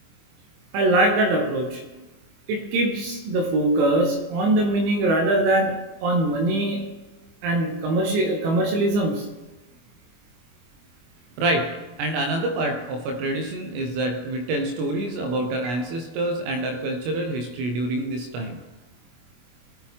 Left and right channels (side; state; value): left; late; 24 ms